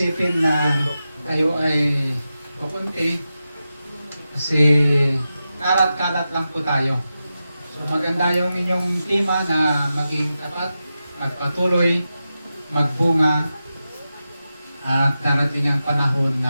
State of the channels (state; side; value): inverted; both; correlation -0.91